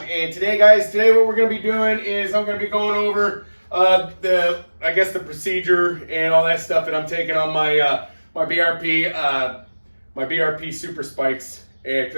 And today, guys, what we're going to be doing is I'm going to be going over the procedure and all that stuff that I'm taking on my my BRP Super Spikes,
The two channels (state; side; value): inverted; both; correlation -1.00